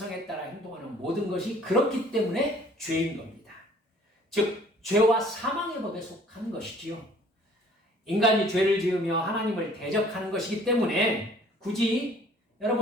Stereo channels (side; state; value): both; normal; correlation 0.54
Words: 따라 행동하는 모든 것이 그렇기 때문에 죄인 겁니다. 즉 죄와 사망의 법에 속한 것이지요. 인간이 죄를 지으며 하나님을 대적하는 것이기 때문에 굳이